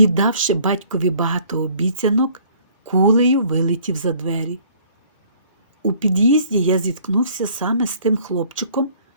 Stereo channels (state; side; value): inverted; both; correlation -0.57